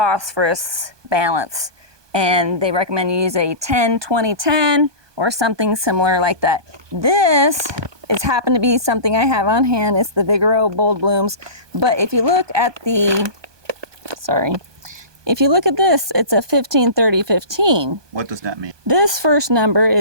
balance. And they recommend you use a 10-20-10 or something similar like that. This is happened to be something I have on hand. It's the Vigoro Bold Blooms. But if you look at if you look at this, it's a 15-30-15. What does that mean? This first number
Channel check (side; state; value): left; late; 1.2 ms